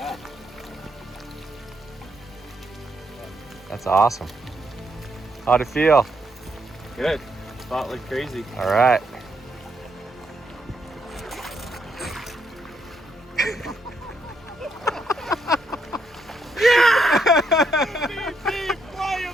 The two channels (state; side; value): normal; both; correlation 0.76